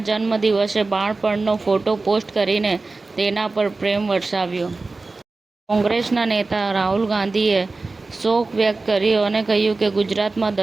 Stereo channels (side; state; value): left; quieter; 3.6 dB